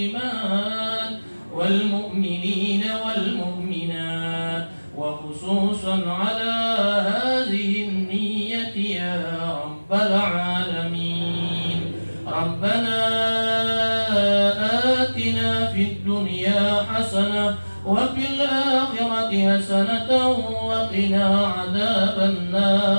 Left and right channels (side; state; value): both; inverted; correlation -1.00